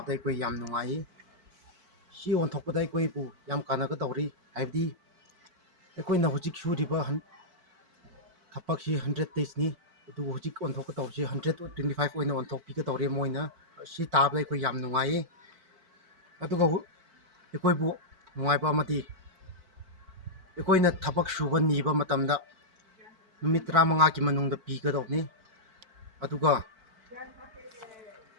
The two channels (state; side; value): late; left; 4.5 ms